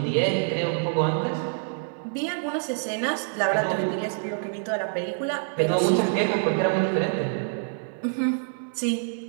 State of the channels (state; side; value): silent; left; 61 dB below the other